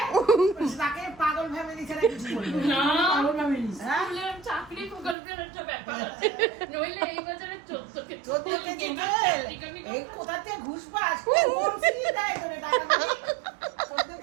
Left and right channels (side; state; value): left; drops out; at 5.2 s